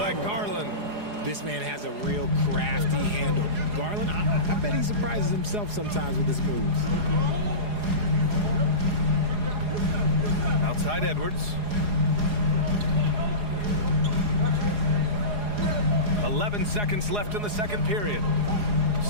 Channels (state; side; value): late; left; 4.8 ms